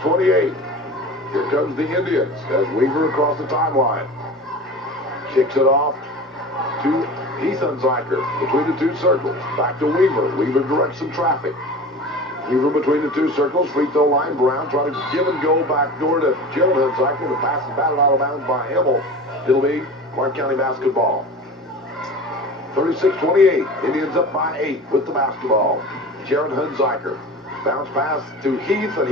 Here comes the Indians as Weaver across the timeline. Kicks it off to Heath Hunziker between the two circles. Back to Weaver. Weaver directs some traffic. Weaver between the two circles, free throw line. Brown trying to give and go back door to Jared Hunziker. The pass is batted out of bounds by Emmel. It'll be Clark County basketball. 36-28. Indians up by 8 with the basketball. Jared Hunziker. Bounce pass to Heath, and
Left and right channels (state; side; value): normal; both; correlation 0.35